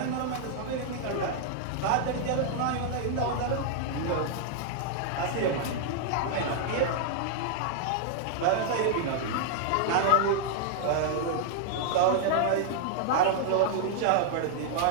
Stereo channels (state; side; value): different; both; correlation -0.01